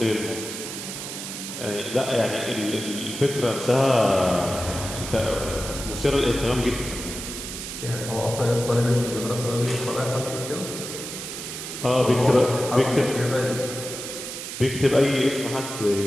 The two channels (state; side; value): noise; right; hiss, 8 dB below the sound